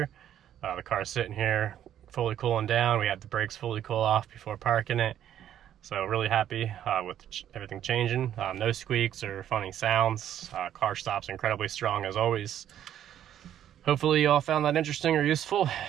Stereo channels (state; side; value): quieter; left; 10.8 dB